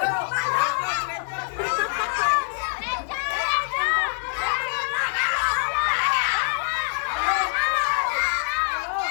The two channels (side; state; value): right; silent; digital silence